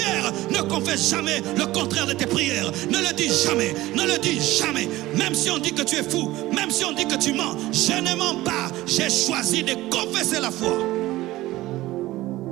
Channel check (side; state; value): left; quieter; 17.3 dB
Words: Ne confesse jamais le contraire de tes prières. Ne le dis jamais. Ne le dis jamais. Même si on dit que tu es fou, même si on dit que tu mens, je ne mens pas. J'ai choisi de confesser la foi.